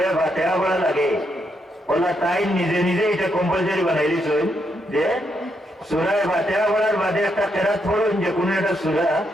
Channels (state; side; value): normal; both; correlation 0.79